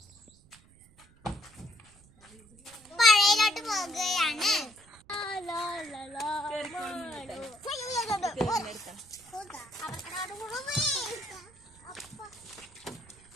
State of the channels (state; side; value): noise; right; rumble, 27 dB below the sound